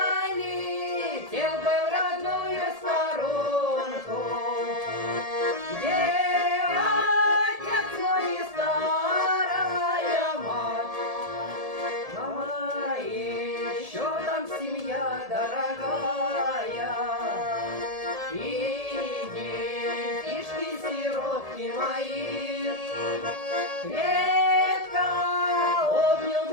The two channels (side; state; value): left; late; 1.7 ms